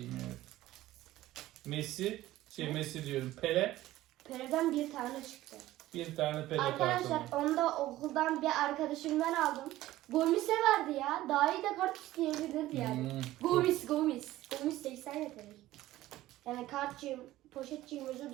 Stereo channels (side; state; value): left; quieter; 15.7 dB